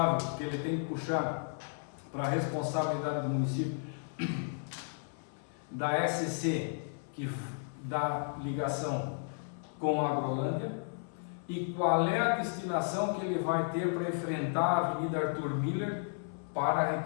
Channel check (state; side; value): silent; right; 55 dB below the other